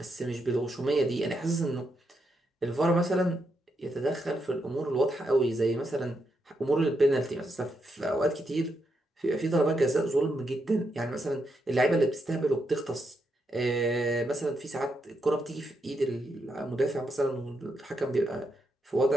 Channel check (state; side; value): normal; both; correlation 0.81